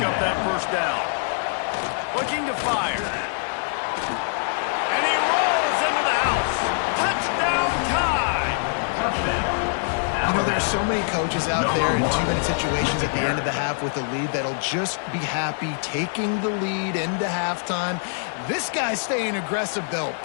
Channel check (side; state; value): right; silent; 63 dB below the other